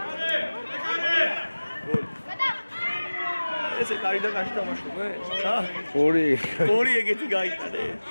ესე კაი და კაში თამაშობე? ორი ეგეთი გაიტანე.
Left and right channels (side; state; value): both; inverted; correlation -1.00